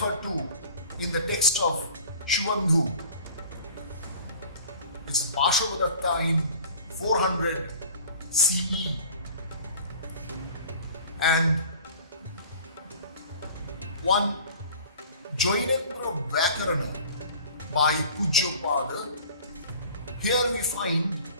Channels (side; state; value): both; inverted; correlation -0.44